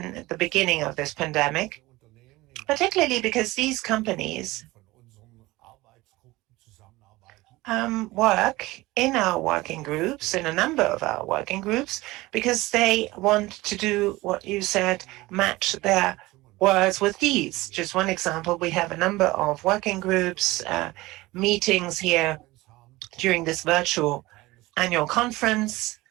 at the beginning of this pandemic, particularly because these companies work in our working groups, in a number of our working groups, because they want to do what you said, match their words with deeds. Just one example, we have a number of working groups, meetings here during this virtual annual conference.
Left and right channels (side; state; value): left; quieter; 20.0 dB